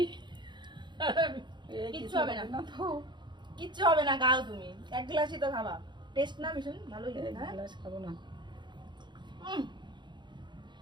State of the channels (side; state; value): left; late; 0.22 ms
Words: কিচ্ছু হবে না, কিচ্ছু হবে না, খাও তুমি। এক গ্লাসই তো খাবা। টেস্ট না ভীষণ ভালোই লাগে। হ্যাঁ, গ্লাস খাবো না।